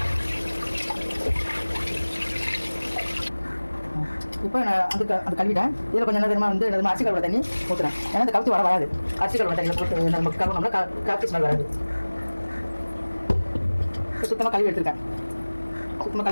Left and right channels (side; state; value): both; inverted; correlation -1.00